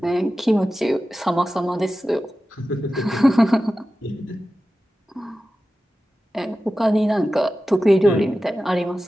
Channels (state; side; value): normal; both; correlation 0.94